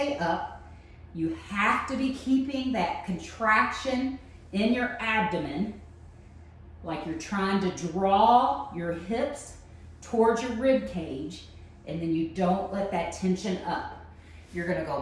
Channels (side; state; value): both; identical; correlation 1.00